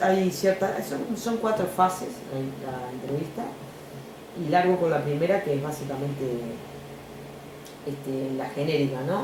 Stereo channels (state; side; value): identical; both; correlation 1.00